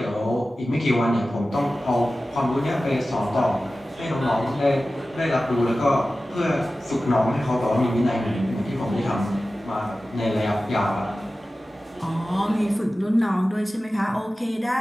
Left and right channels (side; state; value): both; normal; correlation 0.95